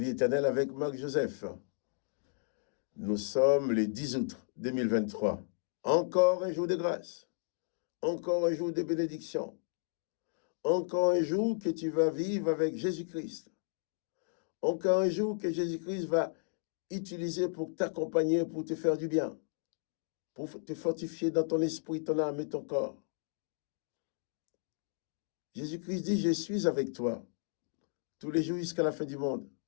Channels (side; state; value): right; silent; digital silence